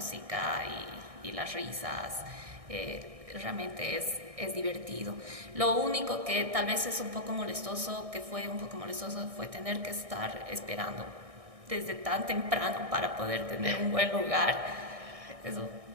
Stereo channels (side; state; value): left; late; 1.6 ms